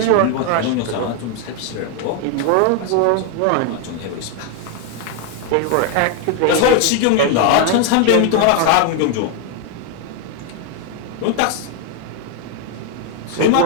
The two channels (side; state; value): both; different; correlation 0.01